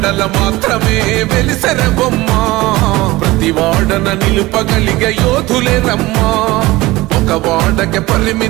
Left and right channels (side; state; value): left; quieter; 19.7 dB